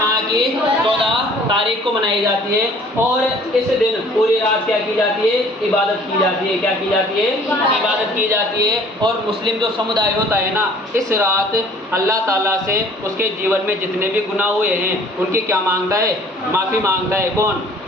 की 14 तारीख को मनाई जाती है। और इस दिन पूरी रात क्या की जाती है? इबादत की जाती है। क्या की जाती है? इबादत की जाती है। और मुस्लिम जो समुदाय होता है ना, इस रात अल्लाह ताला से उसके जीवन में जितने भी गुनाह हुए हैं उनकी क्या मांगता है? माफ़ी मांगता है। कौन?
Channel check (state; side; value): normal; both; correlation 0.53